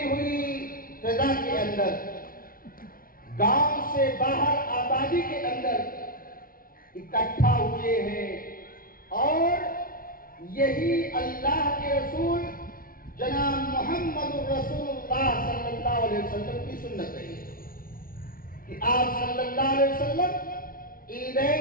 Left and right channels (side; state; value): right; late; 0.42 ms